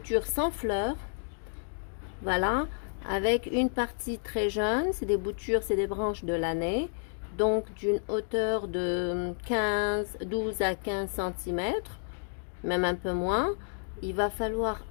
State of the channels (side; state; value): right; silent; digital silence